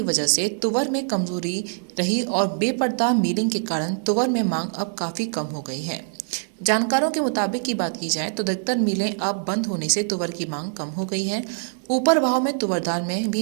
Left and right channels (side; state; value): left; silent; digital silence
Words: वजह से तुवर में कमजोरी रही और बेपर्दा मिलिंग के कारण तुवर में मांग अब काफी कम हो गई है। जानकारों के मुताबिक की बात की जाए तो अधिकतर मिलें अब बंद होने से तुवर की मांग कम हो गई है। ऊपर भाव में तुवर दाल में